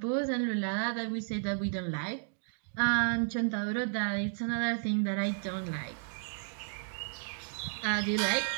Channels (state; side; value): silent; left; digital silence